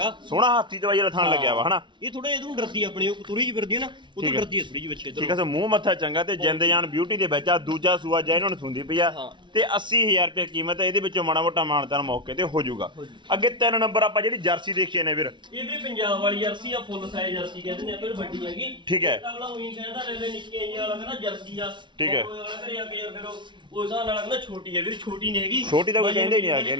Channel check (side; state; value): left; late; 0.23 ms